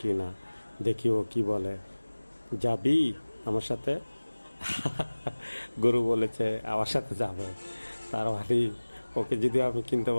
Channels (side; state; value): both; inverted; correlation -1.00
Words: কি না, দেখি ও কি বলে। যাবি আমার সাথে? গরু বলেছে আমার সাথে যাবে। তার মানে ওকে যদি আমি কিনতে